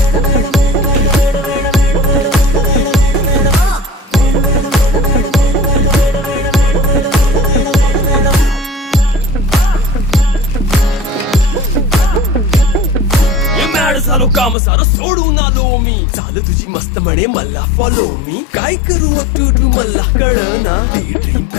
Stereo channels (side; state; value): right; drops out; at 14.6 s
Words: झालो काम सारं सोडून आलो मी चाल तुझी मस्त म्हणे मला फॉलो मी काय करू तू मला कळना ड्रीम